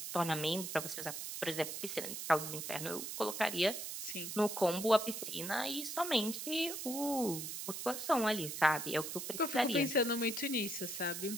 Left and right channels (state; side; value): noise; right; hiss, 6 dB below the sound